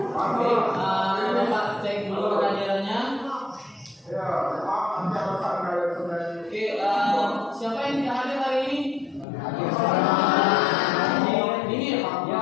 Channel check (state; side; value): drops out; right; at 9.2 s